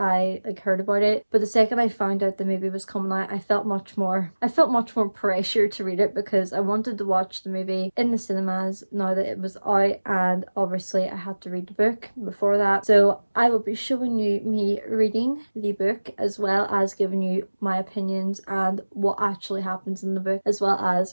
heard about it, but the second I found out the movie was coming out, I felt much more pressure to read it because I wanted to watch the movie in the cinemas now that it was out, and obviously I had to read the book before that. So I will be showing you me reading the book as well as giving you my opinions and what actually happens in the book, as well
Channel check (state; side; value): inverted; both; correlation -1.00